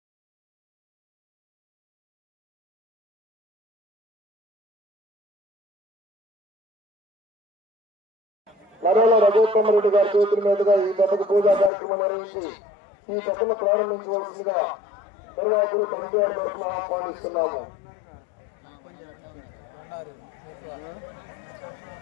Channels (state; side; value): drops out; right; at 11.7 s